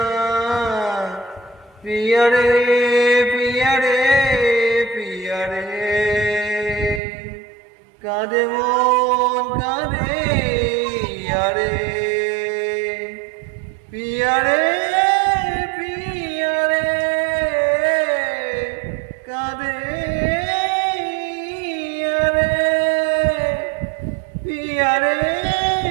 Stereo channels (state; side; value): drops out; left; at 7.0 s